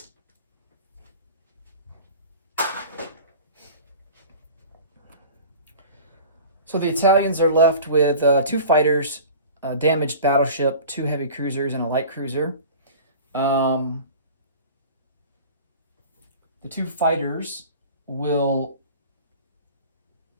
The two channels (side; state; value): both; inverted; correlation -0.40